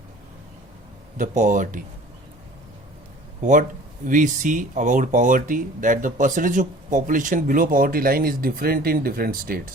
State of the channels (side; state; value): both; normal; correlation 0.46